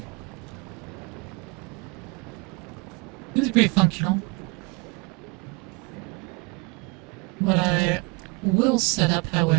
This is pretty functional. What I will set up,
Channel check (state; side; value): quieter; left; 26.7 dB